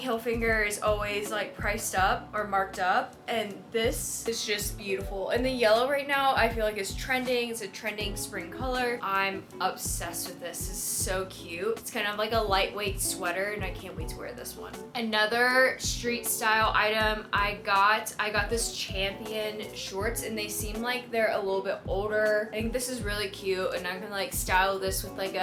is always like priced up or marked up, and this is just beautiful. And the yellow right now I feel like is trending. It's a trending spring color. I'm obsessed with this. It's so cute. It's kind of like a lightweight sweater, and I can't wait to wear this one. Another street style item I got this Champion shorts, and they seem like they're a little bit older. I think this is really cute, and I can like style this with like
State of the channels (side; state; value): both; identical; correlation 1.00